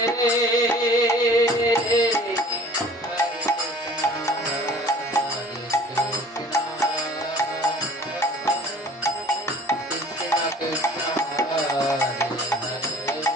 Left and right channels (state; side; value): normal; both; correlation 0.49